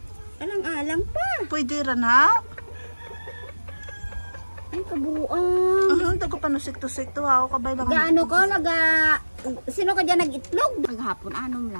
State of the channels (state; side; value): inverted; both; correlation -1.00